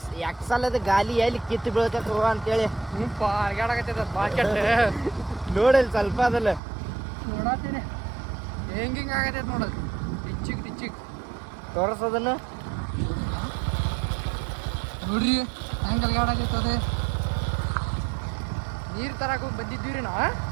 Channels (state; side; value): drops out; left; at 6.6 s